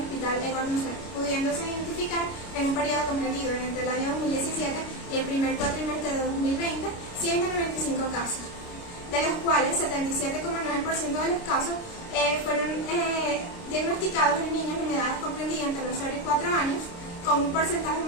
Hospital Edward Lucerda, pudiéndose identificar en un periodo comprendido entre el año 2017 y el primer cuatrimestre de 2020 195 casos, de los cuales 77,9% de los casos fueron diagnosticados en niños en edades comprendidas entre los 0 y 4 años, con un porcentaje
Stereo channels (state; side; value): late; right; 29 ms